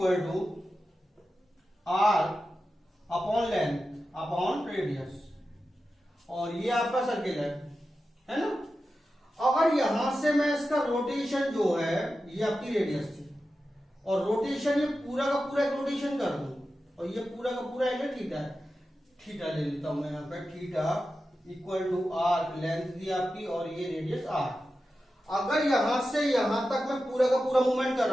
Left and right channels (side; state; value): both; normal; correlation 0.92